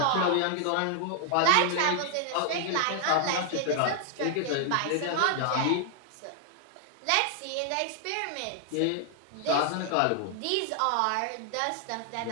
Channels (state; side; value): different; both; correlation 0.00